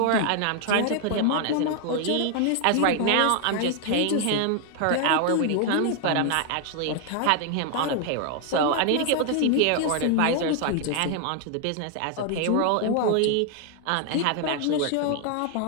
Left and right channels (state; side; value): different; both; correlation 0.00